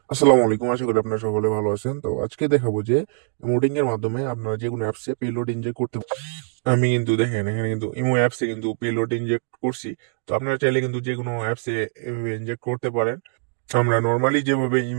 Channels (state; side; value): silent; left; digital silence